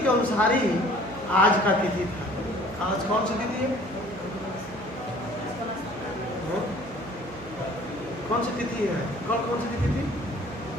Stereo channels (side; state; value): right; noise; hum, 16 dB below the sound